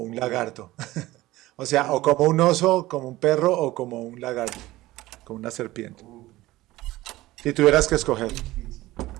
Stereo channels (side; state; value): left; quieter; 17.6 dB